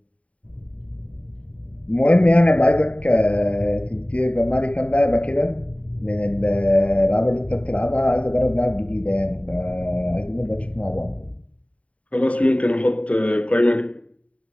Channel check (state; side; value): late; right; 0.066 ms